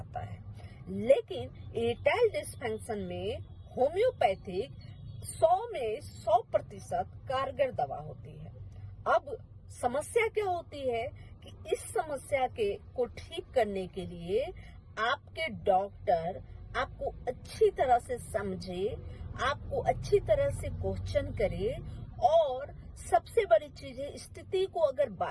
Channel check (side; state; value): both; identical; correlation 1.00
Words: है। लेकिन इरेक्टाइल डिसफंक्शन में होम्योपैथिक 100 में 100% कारगर दवा होती है। अब समस्या क्या होती है कि इस समस्या को ठीक करने के लिए आपके डॉक्टर आपको अच्छी तरह से समझे, आपको अच्छी तरह से क्वेश्चन करे, और सबसे बड़ी चीज है, स्थिति को अगर